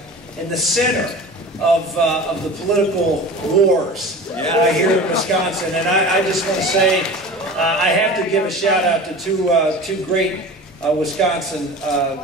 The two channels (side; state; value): both; normal; correlation 0.36